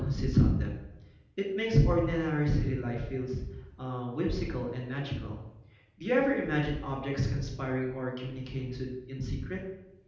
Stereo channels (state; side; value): identical; both; correlation 1.00